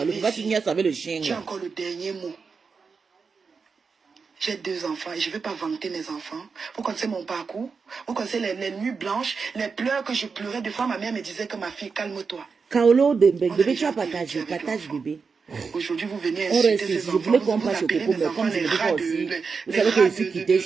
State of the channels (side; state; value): left; quieter; 5.2 dB